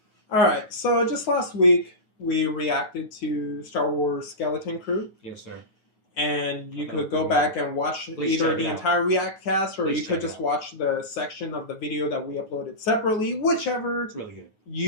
All right, so just last week we reacted to Star Wars Skeleton Crew, Yes, sir. and you That could was go pretty back and watch Please either check the it out. entire React cast, or Please you could check it just out. watch the section of the video that we uploaded separately, whichever It's really good.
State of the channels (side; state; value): right; late; 9.4 ms